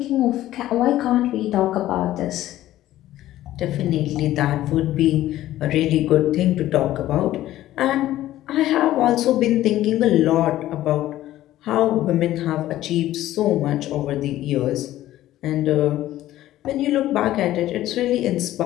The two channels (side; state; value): right; quieter; 14.2 dB